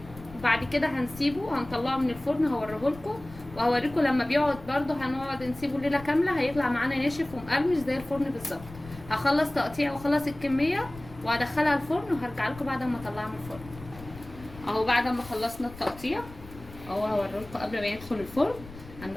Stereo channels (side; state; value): left; noise; rumble, 17 dB below the sound